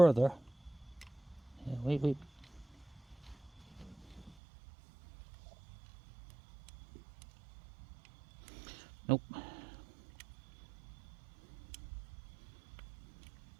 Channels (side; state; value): left; drops out; at 4.4 s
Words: Yeah, wait. Nope.